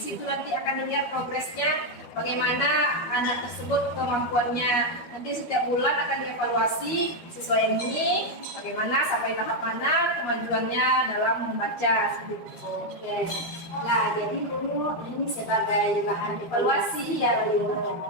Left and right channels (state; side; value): late; right; 13 ms